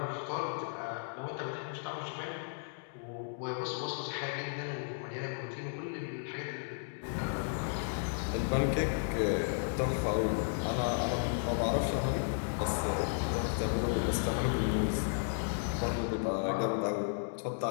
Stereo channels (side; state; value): right; silent; digital silence